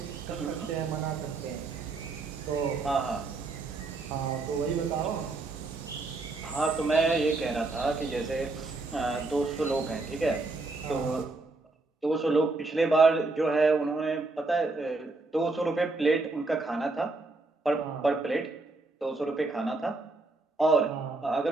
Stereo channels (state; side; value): quieter; left; 3.4 dB